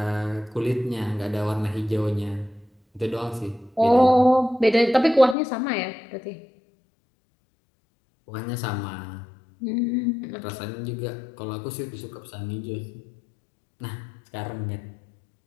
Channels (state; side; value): drops out; right; at 5.4 s